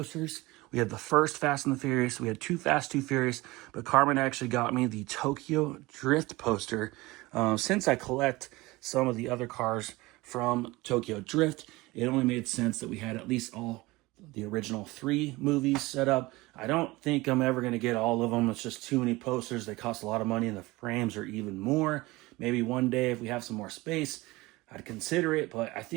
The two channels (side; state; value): left; quieter; 21.2 dB